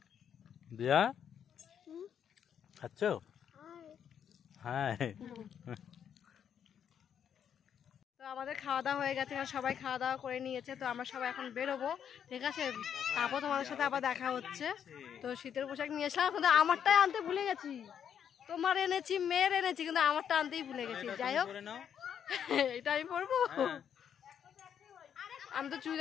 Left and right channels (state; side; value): quieter; right; 8.5 dB